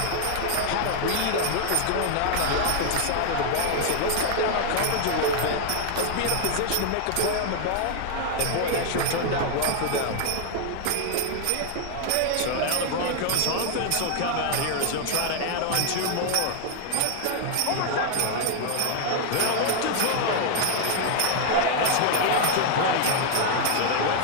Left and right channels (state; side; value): different; both; correlation 0.00